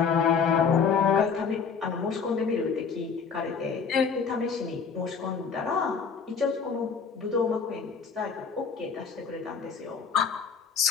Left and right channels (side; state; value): right; quieter; 5.9 dB